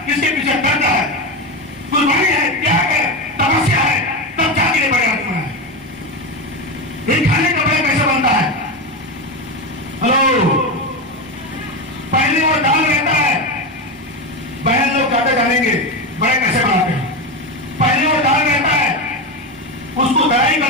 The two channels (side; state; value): both; normal; correlation 0.16